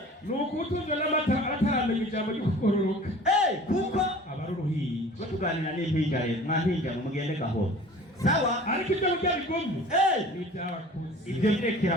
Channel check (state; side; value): normal; both; correlation 0.44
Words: nuko utunze n'amata ataramenya ijambo ryo kukororoka kuko abaruruhiye tuganira n'impinja rero mwampinja mu mugende gahoro sawa ariko ibyo ujyabigumye ni ibyabakuze ibyo birekera